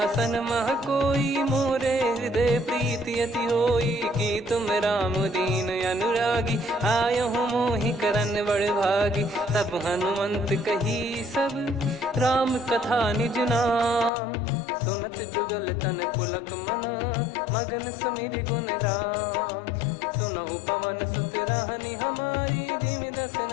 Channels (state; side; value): drops out; right; at 14.1 s